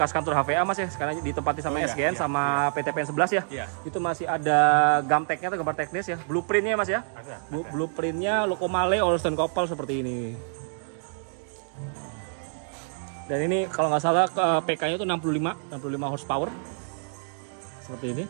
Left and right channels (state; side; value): silent; left; digital silence